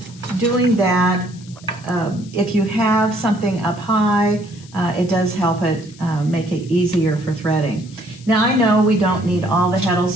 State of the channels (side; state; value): left; noise; hiss, 23 dB below the sound